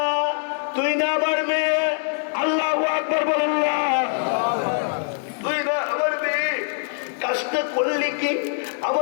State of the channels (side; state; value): right; silent; digital silence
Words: তুই না আমার মেয়ে? আল্লাহু আকবার বলেন না? তুই না আমার মেয়ে? কাজটা করলি কি?